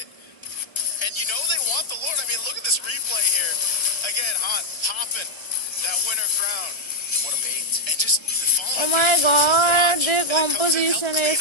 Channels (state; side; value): late; right; 1.3 ms